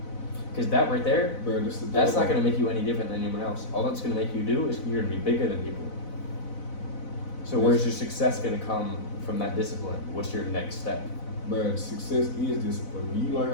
Because that right there, Bro, that's not going to make you any different than anyone else. All that's going to make you do is you're going to be bigger than people. So where's your success gonna come from that discipline? What's your next step? But success is discipline. When you learn how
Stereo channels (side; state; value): right; late; 4.0 ms